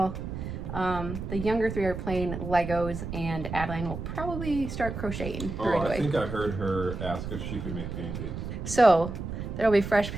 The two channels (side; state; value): right; noise; rumble, 6 dB below the sound